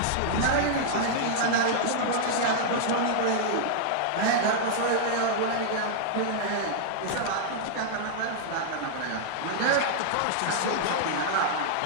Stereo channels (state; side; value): different; both; correlation -0.01